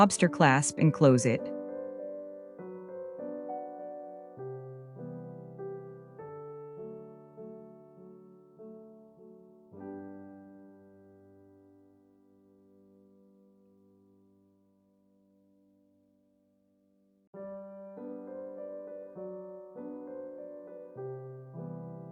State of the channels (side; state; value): both; identical; correlation 1.00